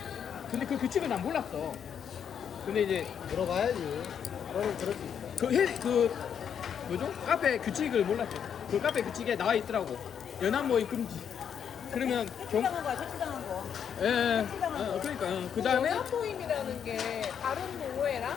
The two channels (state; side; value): quieter; right; 8.1 dB